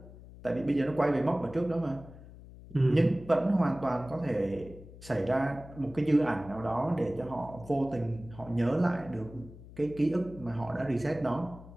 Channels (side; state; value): left; noise; hum, 17 dB below the sound